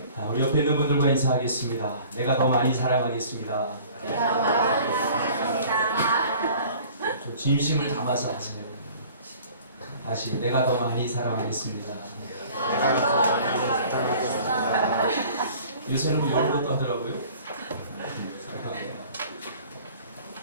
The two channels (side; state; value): both; inverted; correlation -0.49